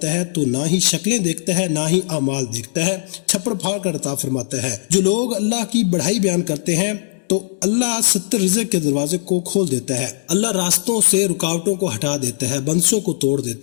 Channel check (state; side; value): silent; right; digital silence